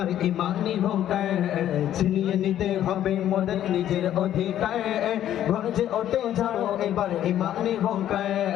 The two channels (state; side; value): quieter; right; 11.5 dB